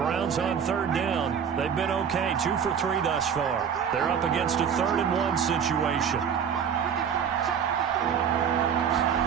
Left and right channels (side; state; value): left; quieter; 7.6 dB